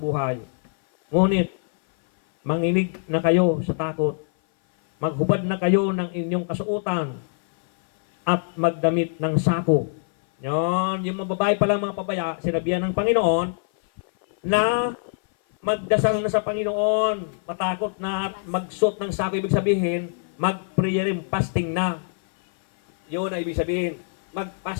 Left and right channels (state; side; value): silent; right; 58 dB below the other